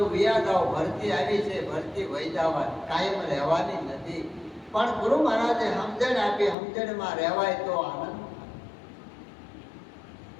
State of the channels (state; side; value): drops out; right; at 6.6 s